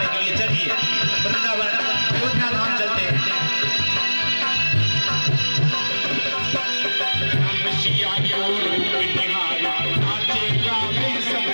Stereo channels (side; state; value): both; inverted; correlation -1.00